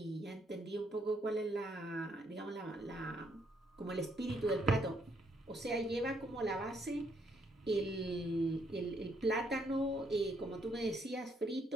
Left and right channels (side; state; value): both; normal; correlation 0.72